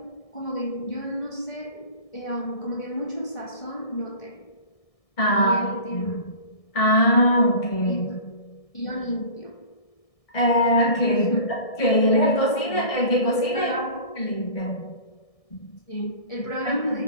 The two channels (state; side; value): late; right; 1.6 ms